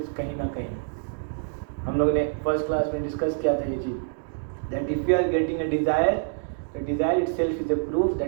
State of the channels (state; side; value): silent; left; digital silence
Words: कहीं ना कहीं। हम लोगों ने फर्स्ट क्लास में डिस्कस किया था ये चीज़, that if you are getting a desire, the desire itself is a proof